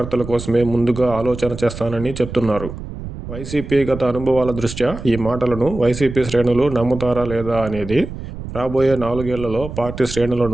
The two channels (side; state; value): right; noise; rumble, 10 dB below the sound